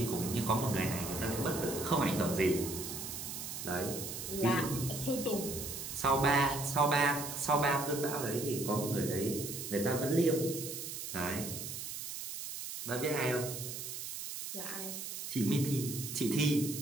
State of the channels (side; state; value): right; noise; hiss, 7 dB below the sound